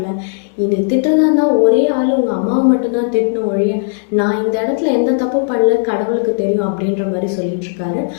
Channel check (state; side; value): silent; right; digital silence